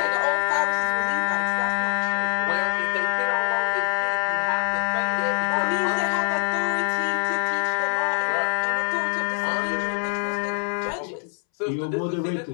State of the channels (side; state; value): right; silent; 62 dB below the other